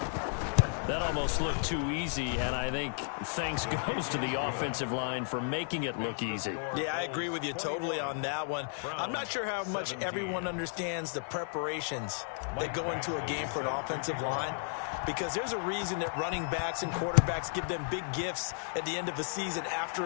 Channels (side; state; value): right; silent; 55 dB below the other